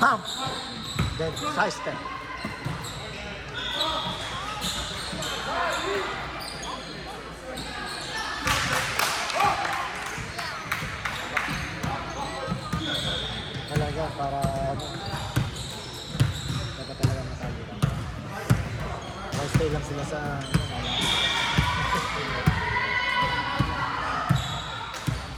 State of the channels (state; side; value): identical; both; correlation 1.00